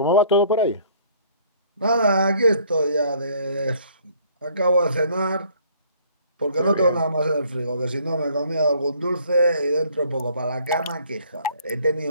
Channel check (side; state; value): both; inverted; correlation -0.59